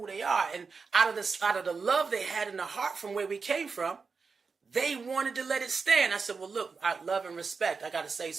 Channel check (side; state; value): left; quieter; 4.9 dB